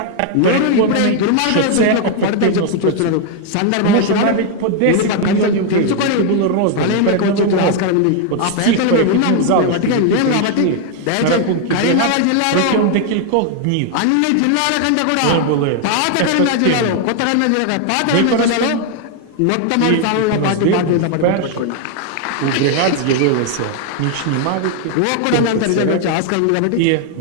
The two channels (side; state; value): both; different; correlation 0.00